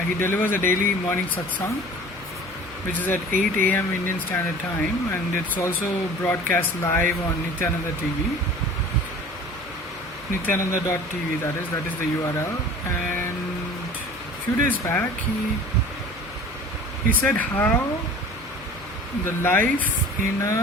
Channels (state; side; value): normal; both; correlation 0.43